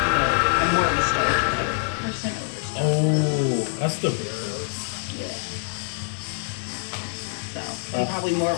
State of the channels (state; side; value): silent; right; digital silence